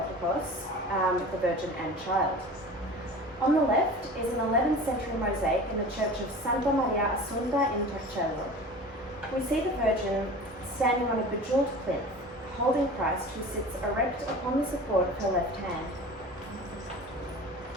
the Virgin and Child. On the left is an 11th century mosaic in the church of Santa Maria Assunta in Torcello. We see the Virgin standing on a bejeweled plinth, holding Christ who sits erect upon the support of her left hand.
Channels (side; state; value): both; normal; correlation 0.38